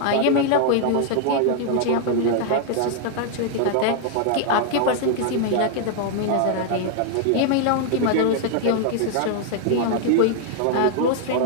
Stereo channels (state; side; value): different; both; correlation 0.00